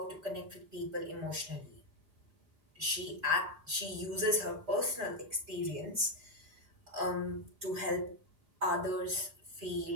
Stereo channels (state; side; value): late; left; 4.9 ms